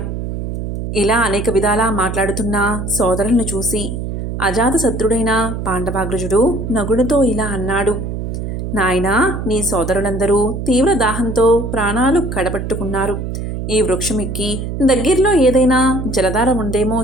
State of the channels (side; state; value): right; noise; hum, 5 dB below the sound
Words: ఇలా అనేక విధాలా మాట్లాడుతున్న సోదరులను చూసి అజాతశత్రుడైన పాండవాగ్రజుడు నగుడుతో ఇలా అన్నాడు: నాయనా, నీ సోదరులందరూ తీవ్ర దాహంతో ప్రాణాలు కడబట్టుకున్నారు. ఈ వృక్షమెక్కి దగ్గరలో ఏదైనా జలధార ఉందేమో